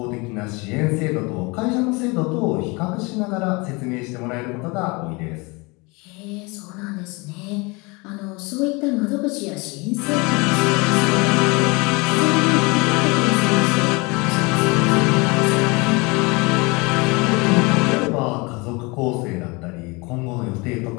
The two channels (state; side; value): quieter; right; 27.0 dB